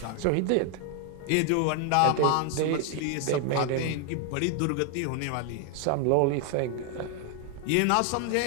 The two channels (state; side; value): different; both; correlation 0.00